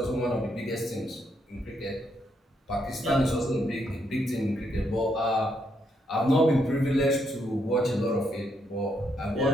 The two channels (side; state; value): both; normal; correlation 0.76